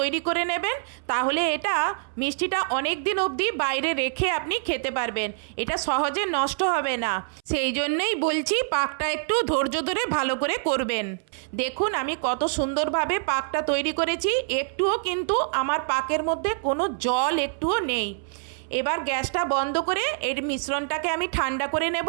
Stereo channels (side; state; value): left; silent; 61 dB below the other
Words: করে নেবেন, তাহলে এটা মিষ্টিটা অনেক দিন অবধি বাইরে রেখে আপনি খেতে পারবেন, এটা সহজে নষ্ট হবে না। সেই জন্যই বলছি পাকটা একটু ধৈর্য ধরে ভালো করে করবেন। দেখুন আমি কত সুন্দরভাবে পাকটা তৈরি করেছি, একটুও কিন্তু আমার পাকের মধ্যে কোনো জল একটুও নেই। এবার গ্যাসটা বন্ধ করে এর মিশ্রণটাকে আমি ঠান্ডা করে নেব।